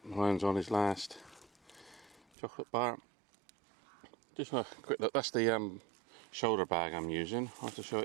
Ryan's on his last chocolate bar. Just a quick look, that's the shoulder bag I'm using. I'll have to show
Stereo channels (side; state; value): left; drops out; at 2.2 s